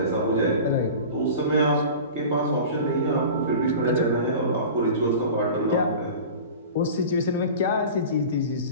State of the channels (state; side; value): inverted; both; correlation -0.36